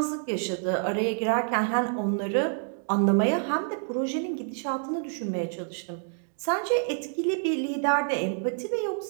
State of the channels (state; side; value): silent; left; 60 dB below the other